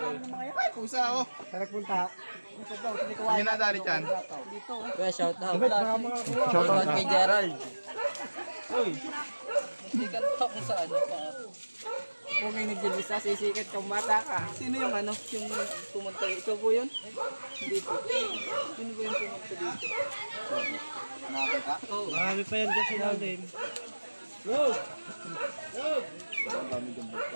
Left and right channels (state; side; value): inverted; both; correlation -1.00